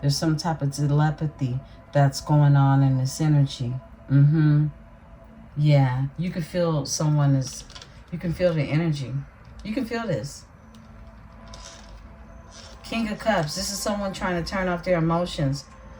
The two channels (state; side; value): identical; both; correlation 1.00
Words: There's some type of telepathy that's going on in this energy. Yeah, you can feel someone is, you can feel the energy. You can feel this. King of Cups. This is someone trying to turn off their emotions,